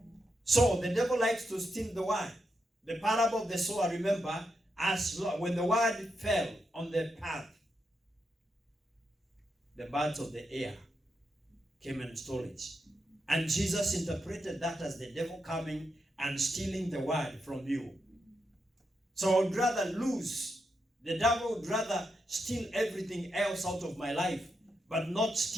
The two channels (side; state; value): both; normal; correlation 0.84